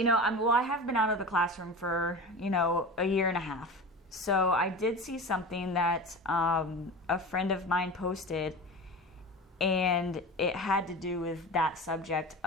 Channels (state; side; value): normal; both; correlation 0.31